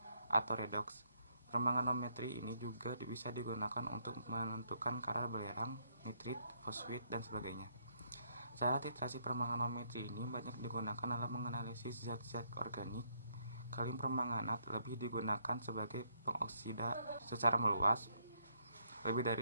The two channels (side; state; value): both; inverted; correlation -0.71